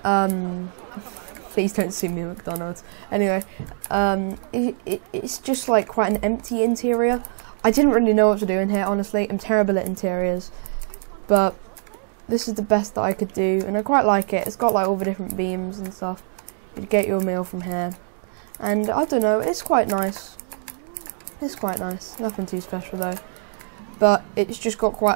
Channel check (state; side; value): silent; left; digital silence